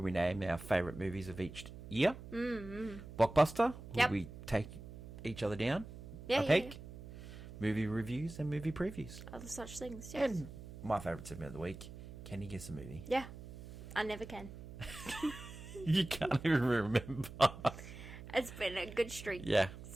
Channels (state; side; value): noise; right; hum, 13 dB below the sound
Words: we name our favourite movies of each year. Blockbuster, where we take each other down a peg. Movie reviews and movie previews. Other such things, yes. And my favourite segment of the week, Can You Guess a Movie? Yeah. I never can. You can't even remember. It's been a good streak